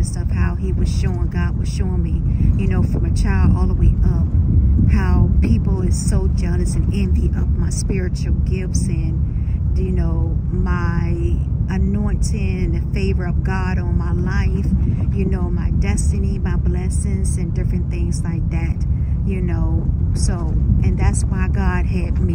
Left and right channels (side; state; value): both; identical; correlation 1.00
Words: stuff, how he was showing, God was showing me, you know, from a child all the way up, how people is so jealous and envy of my spiritual gifts and, you know, my anointing and the favor of God on my life, you know, my destiny, my blessings and different things like that, you know. So, and that's why God had